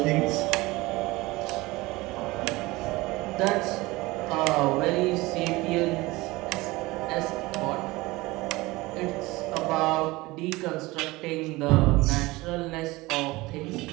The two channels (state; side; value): quieter; left; 21.0 dB